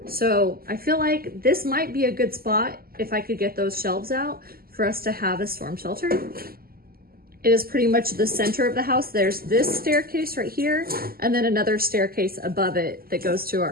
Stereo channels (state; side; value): late; left; 0.43 ms